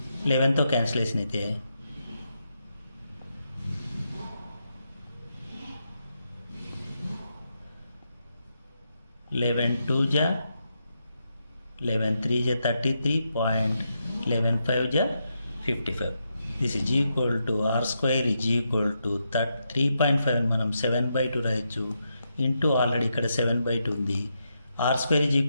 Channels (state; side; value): inverted; both; correlation -0.83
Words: 11తో క్యాన్సిలేషన్ అయితే 11 2 जा 11 3 जा 33.11 5 जा 55. This is equal to r square is equal to 3.5 మనం 7/2 రాయొచ్చు ఇంటూ ఆల్రెడీ ఇక్కడ 7/2 ఉంది. R square is